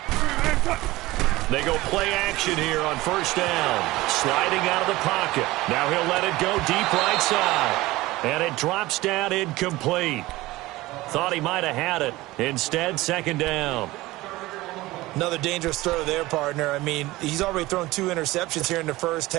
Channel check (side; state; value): left; quieter; 19.0 dB